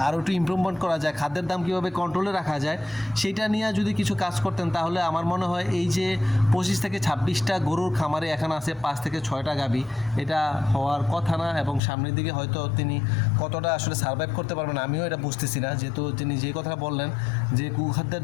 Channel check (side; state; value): right; drops out; at 11.8 s